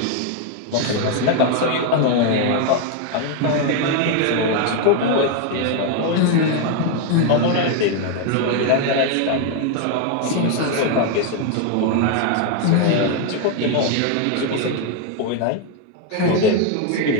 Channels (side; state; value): both; different; correlation 0.01